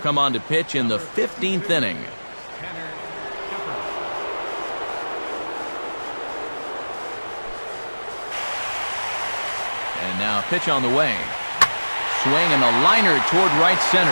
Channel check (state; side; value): inverted; both; correlation -1.00